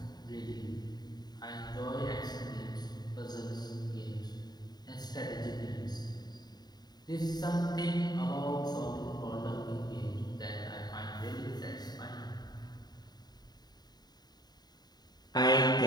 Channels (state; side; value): late; right; 0.20 ms